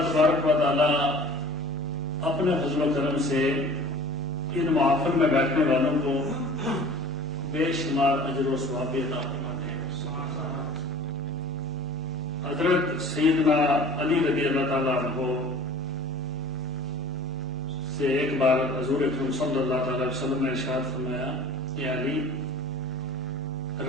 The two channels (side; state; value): both; normal; correlation 0.45